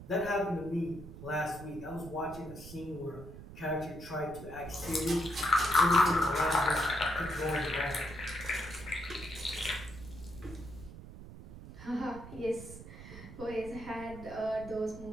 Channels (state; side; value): noise; right; rumble, 14 dB below the sound